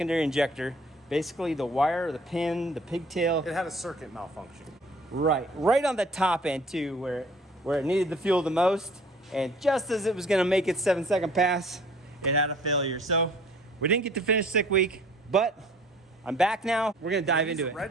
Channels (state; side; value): normal; both; correlation 0.53